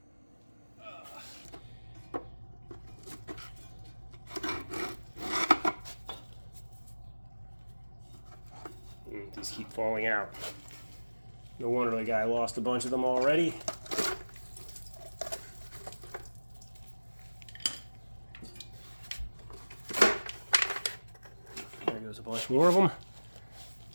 These keep falling out. No wonder the guy lost a bunch of them already. There goes a bunch more of them.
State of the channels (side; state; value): both; inverted; correlation -1.00